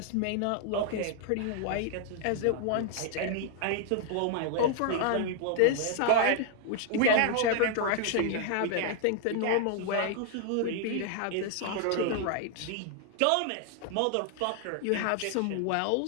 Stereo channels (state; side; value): different; both; correlation 0.00